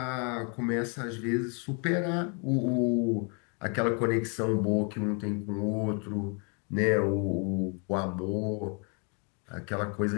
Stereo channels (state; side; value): quieter; right; 36.8 dB